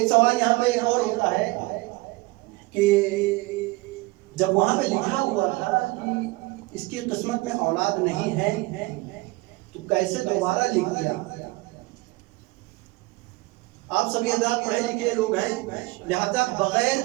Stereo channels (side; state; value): left; quieter; 22.6 dB